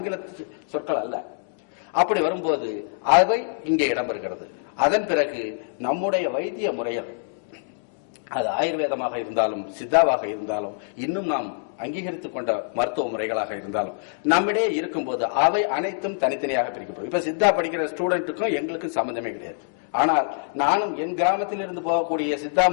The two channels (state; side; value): silent; right; digital silence